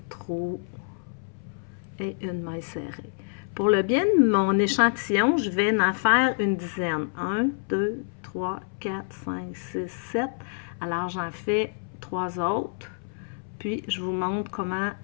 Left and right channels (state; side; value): silent; right; 60 dB below the other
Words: trou et une maille serrée. Pour le bien de mon échantillon, je vais en faire une dizaine. 1, 2, 3, 4, 5, 6, 7. Alors, j'en fais 3 autres. Puis, je vous montre comment